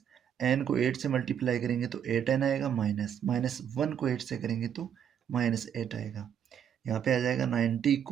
n को 8 से मल्टीप्लाई करेंगे तो 8n आएगा, माइनस 1 को 8 से करेंगे तो -8 आएगा। यहाँ पे आ जाएगा 90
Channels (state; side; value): quieter; left; 8.8 dB